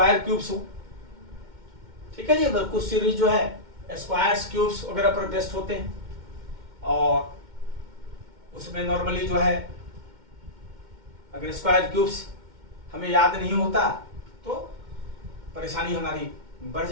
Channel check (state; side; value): late; left; 2.1 ms